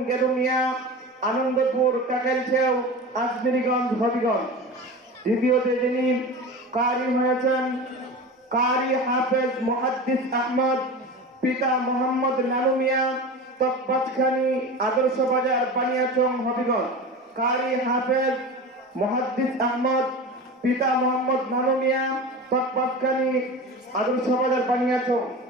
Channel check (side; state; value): both; normal; correlation 0.30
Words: গেদু মিয়া, আনন্দপুর কাকেলছেও আজমিরিগঞ্জ হবিগঞ্জ। দ্বিতীয়তে যিনি কারি হয়েছেন কারি হাফেজ মুহাদ্দিস আহমদ, পিতা মোহাম্মদ নানু মিয়া, তকবাজখানি আদর্শ বাজার বানিয়াচং হবিগঞ্জ। কারি হাফেজ মুহাদ্দিস আহমদ, পিতা মোহাম্মদ নানু মিয়া, তকবাজখানি আদর্শ বাজার বানিয়াচং।